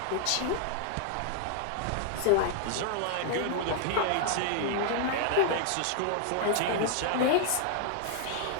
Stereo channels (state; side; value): different; both; correlation 0.00